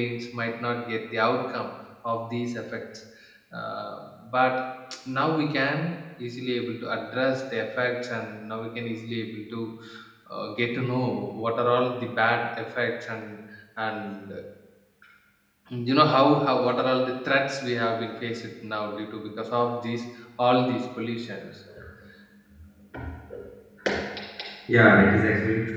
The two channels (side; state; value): both; identical; correlation 1.00